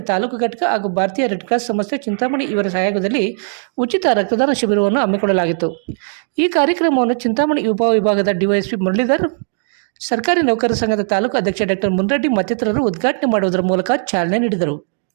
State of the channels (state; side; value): silent; left; 68 dB below the other